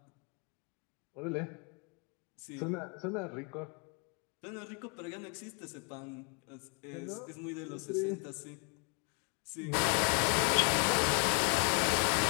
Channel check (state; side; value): quieter; right; 36.2 dB